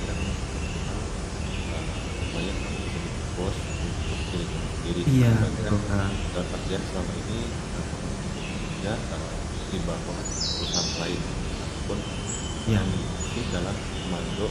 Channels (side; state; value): both; identical; correlation 1.00